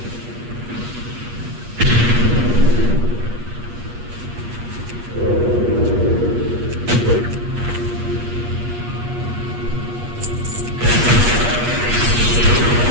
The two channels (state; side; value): late; left; 8.4 ms